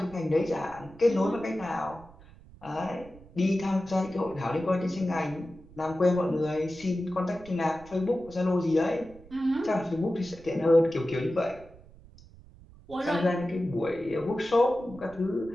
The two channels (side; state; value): right; noise; rumble, 22 dB below the sound